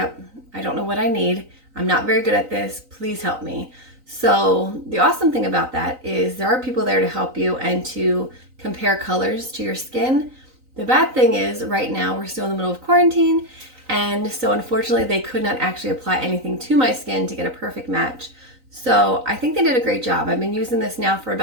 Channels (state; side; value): late; left; 3.9 ms